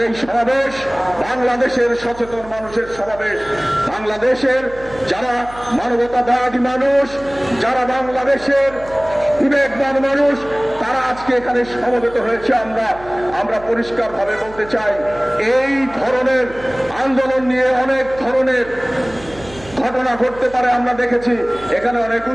এই সমাবেশ বাংলাদেশের সচেতন মানুষের সমাবেশ। বাংলাদেশের যারা মানবতাবাদী মানুষ, যারা বাংলাদেশের বিবেকবান মানুষ, তারা আজকে এখানে সমবেত হয়েছে। আমরা পরিষ্কারভাবে বলতে চাই, এই ধরনের আন্দোলন নিয়ে অনেক ধরনের ঘটনা ঘটতে পারে। আমরা দেখেছি এখানে অনেক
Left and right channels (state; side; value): noise; right; hum, 18 dB below the sound